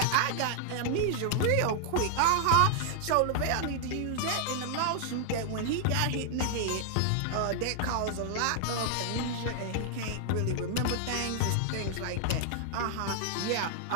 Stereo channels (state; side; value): different; both; correlation -0.01